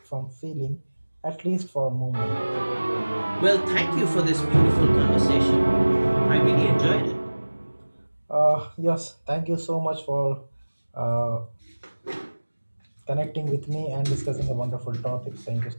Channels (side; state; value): both; inverted; correlation -1.00